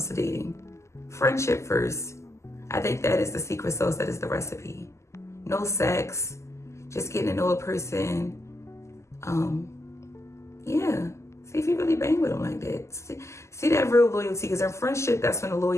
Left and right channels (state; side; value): late; right; 0.13 ms